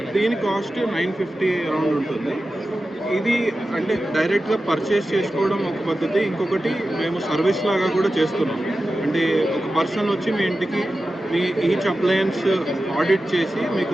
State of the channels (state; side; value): normal; both; correlation 0.93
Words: దీని కాస్ట్ 950 అరౌండ్ ఉంటుంది. ఇది అంటే డైరెక్ట్గా పర్చేస్ చేసుకోవడం ఒక పద్ధతి, ఇంకొకటి మేము సర్వీస్ లాగా కూడా చేస్తున్నాం. అంటే ఒక పర్సన్ వచ్చి మీ ఇంటికి మీ ఈచ్ అప్లయన్స్ ఆడిట్ చేసి మీకు